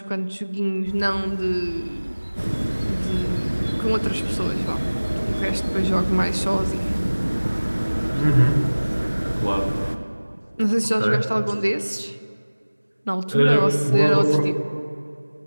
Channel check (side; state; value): both; inverted; correlation -1.00